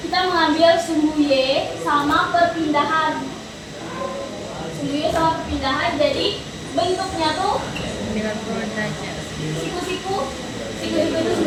kita mengambil sumbu Y sama perpindahan. Sumbu Y sama perpindahan, jadi bentuknya tuh 90 derajat. siku-siku itu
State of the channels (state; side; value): identical; both; correlation 1.00